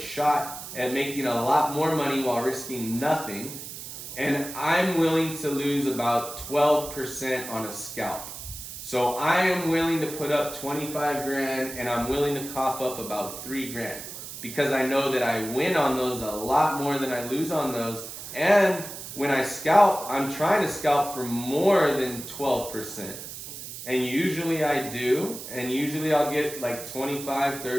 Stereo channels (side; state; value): right; noise; hiss, 10 dB below the sound